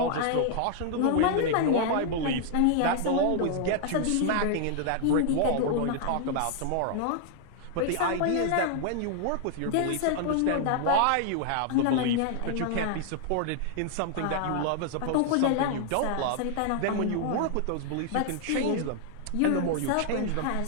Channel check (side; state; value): both; different; correlation -0.01